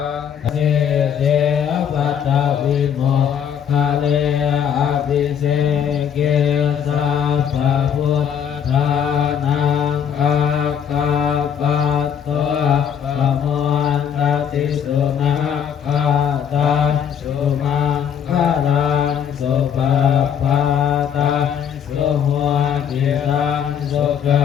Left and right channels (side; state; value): right; quieter; 8.2 dB